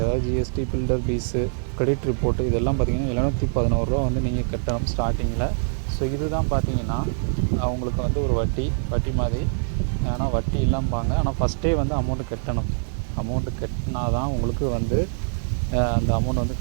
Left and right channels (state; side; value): silent; left; digital silence